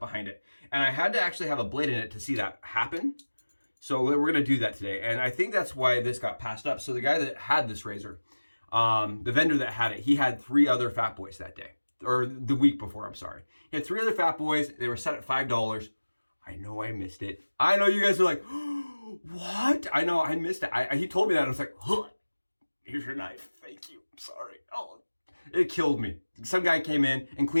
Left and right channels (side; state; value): both; inverted; correlation -1.00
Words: it. And I had to actually have a blade in it to see that happen. So we're going to do that today. And I think that's why this got passed up. So the guy that had this razor, the vendor that had it, he had 3 other Fat Boys that day. Or the week before, I'm sorry. He had 3 other Fat Boys. They were set at $5. I know I missed it. I know you guys are like, what? I know I missed it. He told me that. And I was like, huh, here's your knife. Thank you. I'm sorry. Oh, it killed me. Some guy came in and